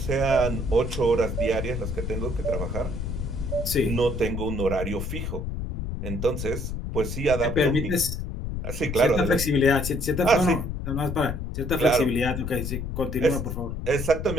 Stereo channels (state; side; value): noise; left; rumble, 4 dB below the sound